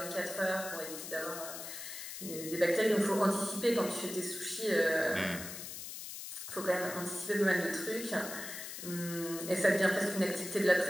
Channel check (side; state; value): left; noise; hiss, 9 dB below the sound